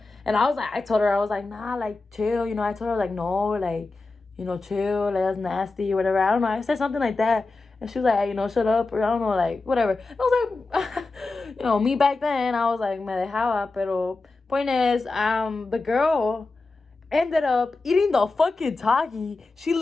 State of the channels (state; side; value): quieter; right; 3.6 dB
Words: And I was like, I told her, I was like, nah, like, chill, you know. I told her, like, no, like, you know, chill, like, that's nasty or whatever. I don't know, I said something like that. And she was like, hey, you know, shut up, or I don't know, like, whatever. And I was like, you know, me back then, I was like, me dejaba, pero point is, the girl ended up eating the fucking Taki. She